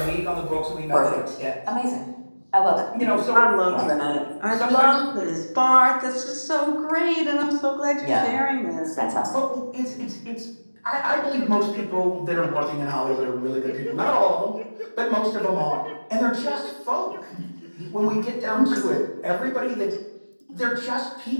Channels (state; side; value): inverted; both; correlation -1.00